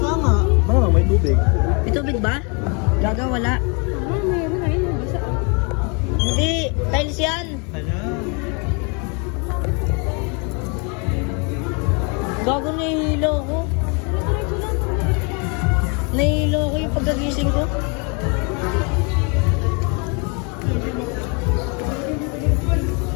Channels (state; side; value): quieter; right; 34.0 dB